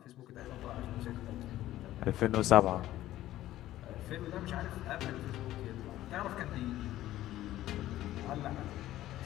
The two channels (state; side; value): quieter; right; 14.3 dB